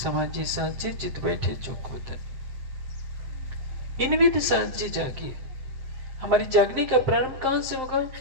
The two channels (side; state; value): left; late; 7.7 ms